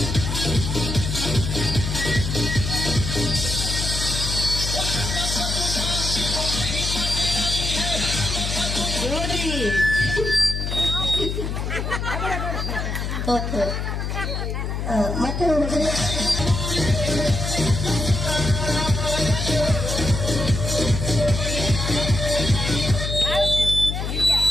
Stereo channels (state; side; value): noise; left; hum, 3 dB below the sound